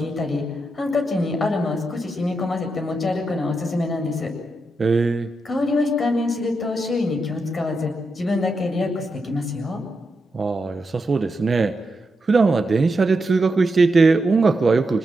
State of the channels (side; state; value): both; normal; correlation 0.85